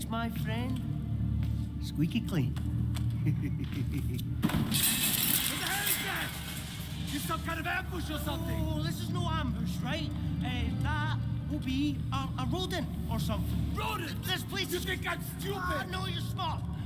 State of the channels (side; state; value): both; identical; correlation 1.00